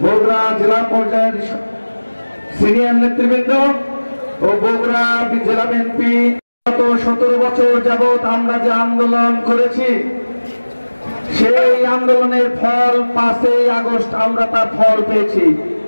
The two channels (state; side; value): inverted; both; correlation -1.00